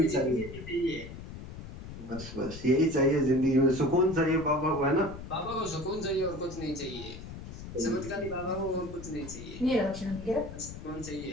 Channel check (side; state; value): left; noise; rumble, 11 dB below the sound